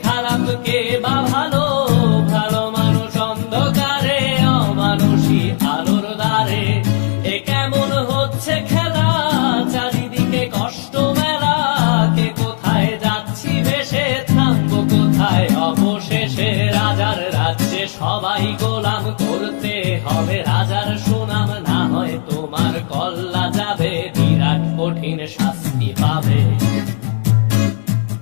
খারাপ কে বা ভালো, ভালো মানুষ অন্ধকারে, অমানুষী আলোর দ্বারে। এ কেমন হচ্ছে খেলা, চারিদিকে কষ্ট মেলা, কে কোথায় যাচ্ছি ভেসে, থামবো কোথায় অবশেষে। রাজার রাজ্যে সবাই গোলাম, করতে হবে রাজার সুনাম, না হয় তোমার কল্লা যাবে, বিরাট কঠিন শাস্তি পাবে।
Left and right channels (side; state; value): right; silent; digital silence